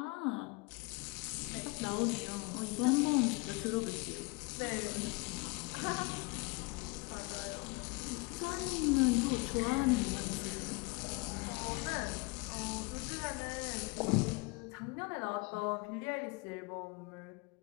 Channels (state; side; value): quieter; right; 26.7 dB